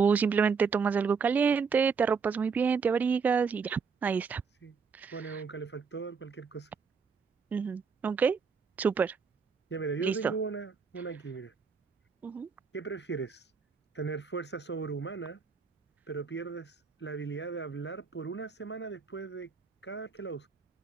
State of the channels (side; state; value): left; quieter; 5.5 dB